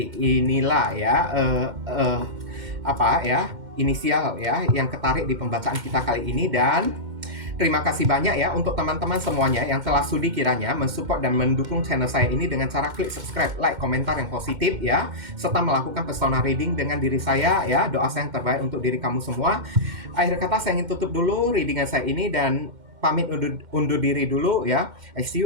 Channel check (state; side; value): late; left; 2.1 ms